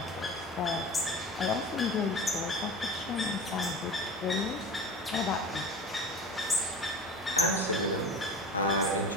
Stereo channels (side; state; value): both; normal; correlation 0.34